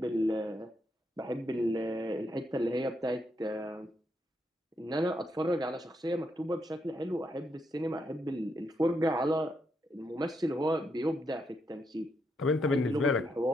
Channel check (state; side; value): normal; both; correlation 0.80